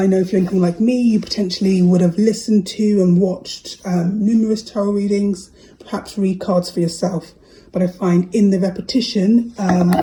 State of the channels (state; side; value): identical; both; correlation 1.00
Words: know if you're anything like me, you potentially would have listened to and watched numerous tarot readings, perhaps read cards for yourself. But I find in the repetition